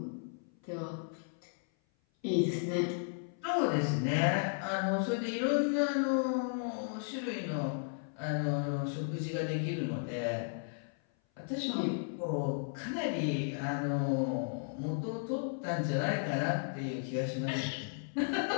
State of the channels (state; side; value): silent; right; 55 dB below the other